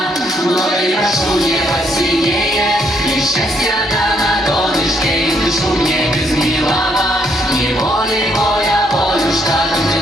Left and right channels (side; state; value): both; normal; correlation 0.72